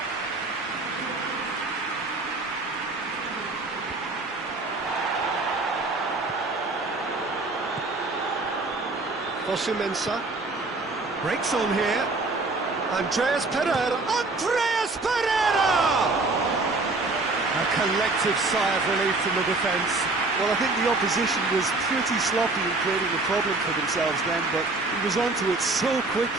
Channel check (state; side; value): quieter; left; 3.3 dB